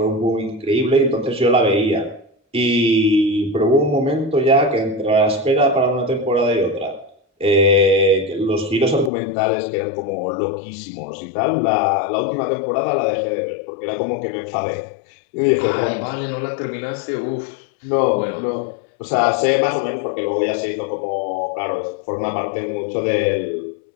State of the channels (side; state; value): right; drops out; at 9.1 s